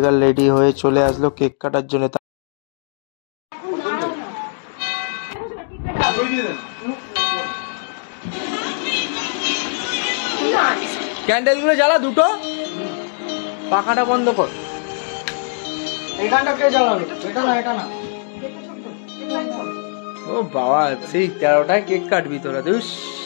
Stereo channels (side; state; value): right; silent; 65 dB below the other